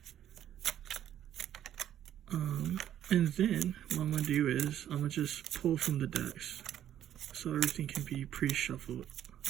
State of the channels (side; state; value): left; quieter; 10.9 dB